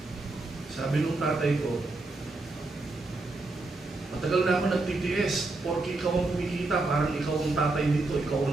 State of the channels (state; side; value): quieter; left; 3.3 dB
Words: Sabi nung tatay ko, matagal na ako nag-TTS, porque ikaw ang kumikita, parang ikaw ang tatay dito, ikaw